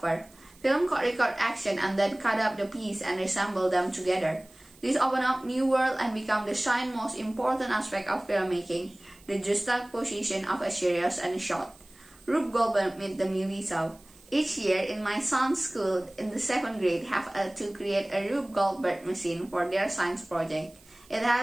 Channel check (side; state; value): right; noise; hiss, 26 dB below the sound